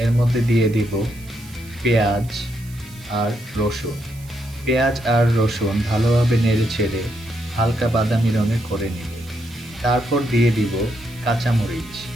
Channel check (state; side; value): noise; right; hiss, 22 dB below the sound